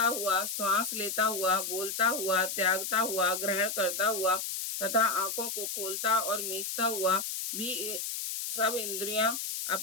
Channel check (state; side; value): noise; left; hiss, 4 dB below the sound